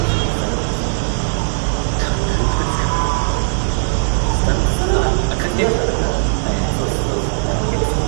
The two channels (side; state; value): left; silent; digital silence